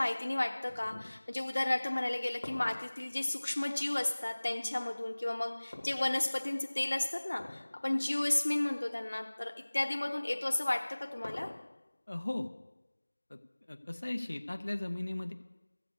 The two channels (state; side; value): inverted; both; correlation -1.00